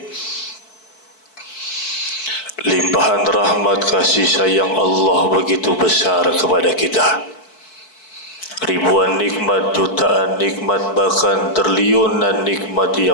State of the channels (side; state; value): right; late; 4.6 ms